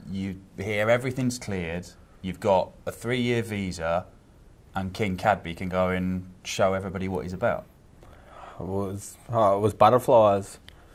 you hear everything's cleared, you've got a 3-year visa and King Cadby can go and show everybody what he's about? It was butterflies.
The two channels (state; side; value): identical; both; correlation 1.00